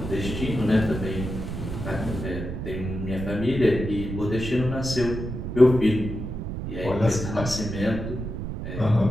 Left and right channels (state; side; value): noise; right; rumble, 6 dB below the sound